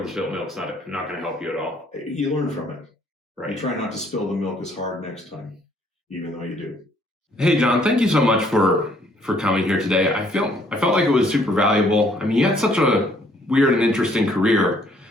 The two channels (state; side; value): normal; both; correlation 0.64